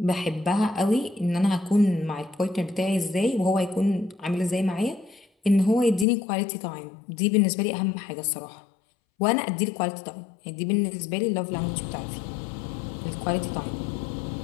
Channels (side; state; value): right; drops out; at 6.1 s